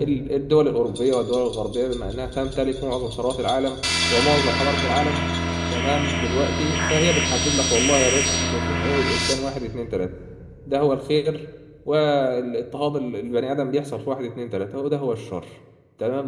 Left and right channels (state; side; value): identical; both; correlation 1.00